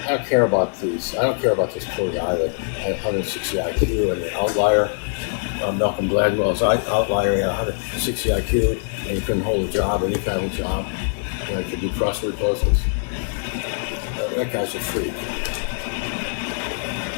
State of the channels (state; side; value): silent; right; digital silence